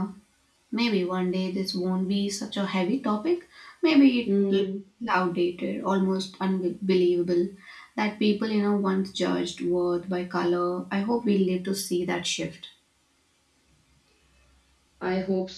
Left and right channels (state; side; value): identical; both; correlation 1.00